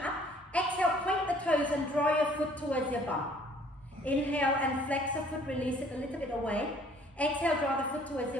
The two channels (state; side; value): normal; both; correlation 0.57